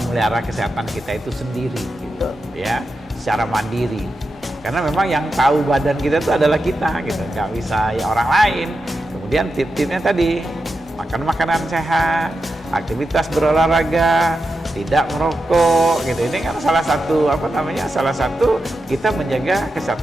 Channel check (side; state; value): both; normal; correlation 0.88